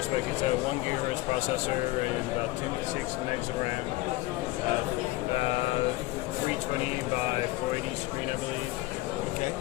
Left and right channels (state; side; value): quieter; right; 19.1 dB